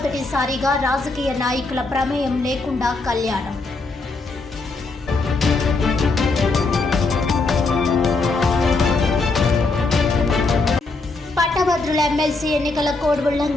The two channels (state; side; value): quieter; right; 3.6 dB